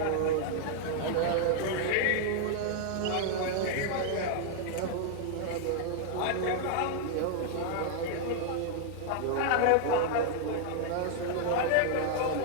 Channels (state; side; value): different; both; correlation 0.00